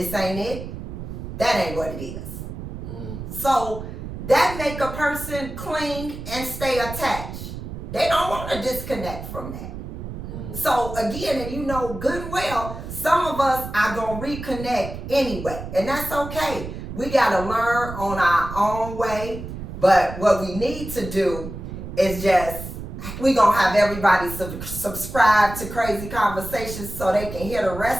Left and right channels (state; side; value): noise; right; rumble, 9 dB below the sound